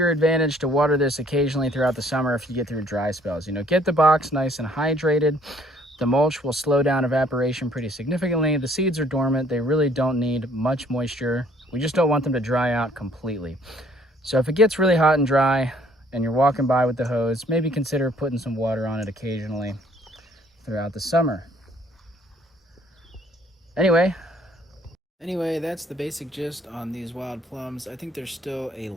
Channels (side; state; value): both; normal; correlation 0.61